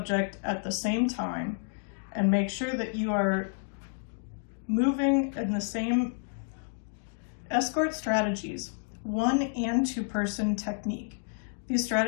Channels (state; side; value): silent; right; digital silence